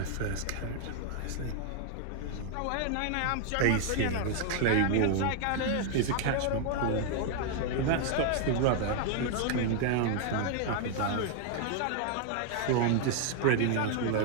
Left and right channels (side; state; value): both; different; correlation 0.00